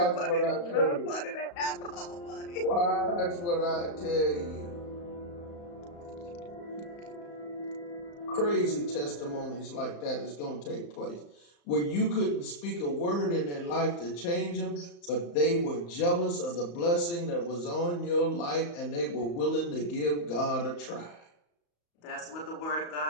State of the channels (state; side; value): late; right; 35 ms